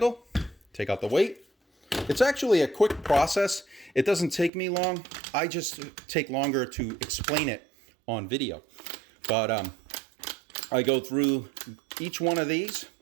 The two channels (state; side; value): drops out; left; at 4.5 s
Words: Take out the weight. It's actually a quick process. It doesn't take me long. I just take longer to explain it on video. But I go through each one of these.